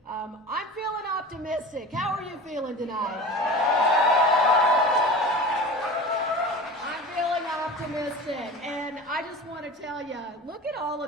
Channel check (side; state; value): both; normal; correlation 0.35